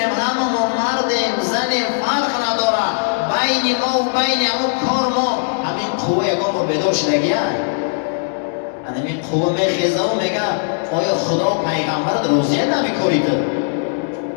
همه ما مردیم زنیم فرق نداره، بین ما و بین همون کار ما همین قوه یکان رو بیدار شدگیه. همین قوه میخیزه و میگه آیا خدا و پیغمبرت روزیه نمیکنی تو؟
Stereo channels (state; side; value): silent; right; digital silence